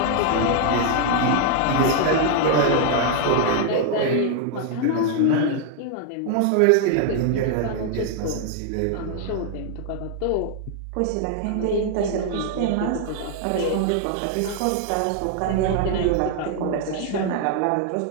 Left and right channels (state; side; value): different; both; correlation 0.00